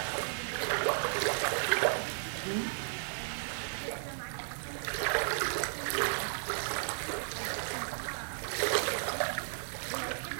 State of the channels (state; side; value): silent; left; digital silence